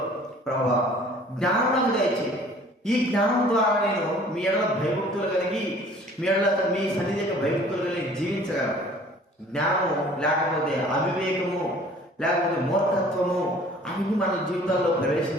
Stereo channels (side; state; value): both; normal; correlation 0.51